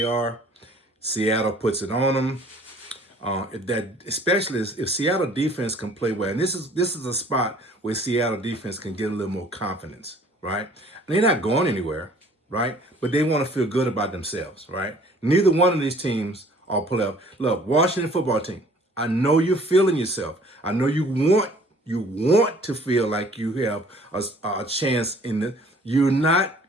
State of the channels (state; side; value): normal; both; correlation 0.54